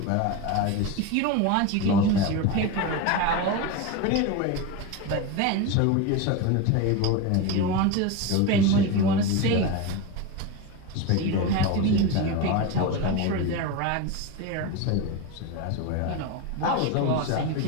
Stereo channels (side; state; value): both; different; correlation 0.05